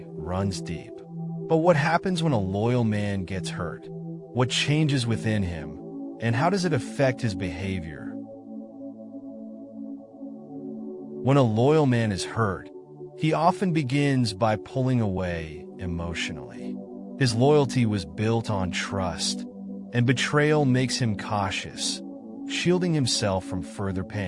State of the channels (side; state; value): both; identical; correlation 1.00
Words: runs deep. But what happens when a loyal man gets hurt? What changes within him, and how does it affect his behavior? When a loyal man is hurt, he often begins by pulling away emotionally. His loyalty was built on trust, and betrayal makes him cautious, shielding himself from further